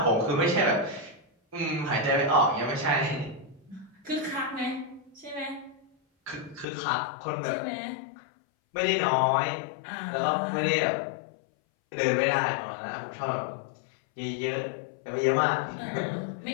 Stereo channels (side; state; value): right; drops out; at 6.7 s